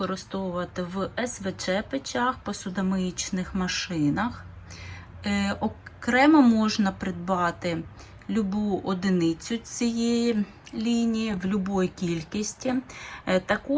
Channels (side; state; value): both; identical; correlation 1.00